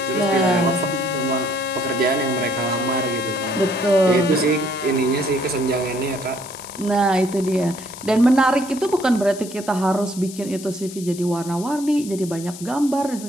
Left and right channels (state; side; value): noise; left; hiss, 14 dB below the sound